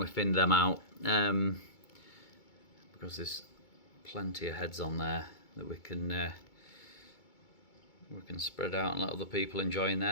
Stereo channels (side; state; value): right; late; 2.2 ms